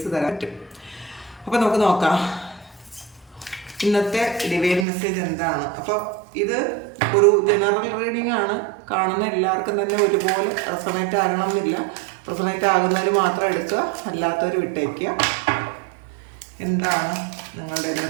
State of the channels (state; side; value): drops out; left; at 4.9 s